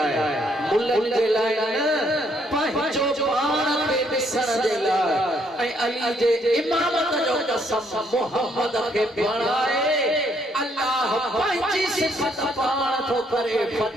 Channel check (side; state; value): both; normal; correlation 0.70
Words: मुल्कनि जे लाइ न पंहिंजो पाण खे ॾिसण जे लाइ ऐं अली जे इमामत जो कसम मोहम्मद खे बणाए अल्लाह पंहिंजी सिफ़त पाण थो करे